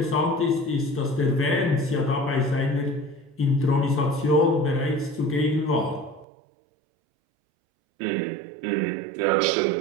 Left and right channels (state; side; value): drops out; left; at 6.2 s